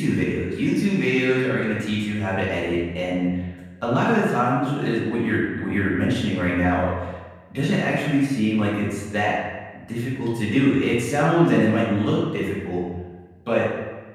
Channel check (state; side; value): identical; both; correlation 1.00